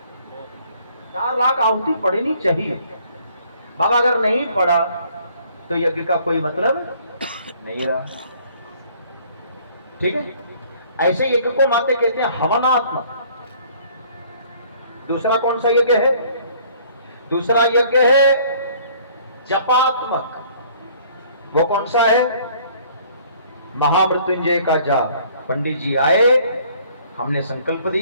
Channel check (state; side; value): inverted; both; correlation -0.58